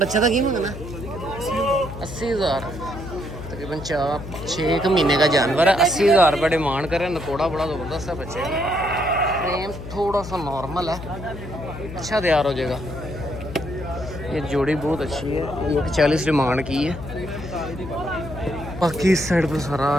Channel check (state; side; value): noise; left; hum, 11 dB below the sound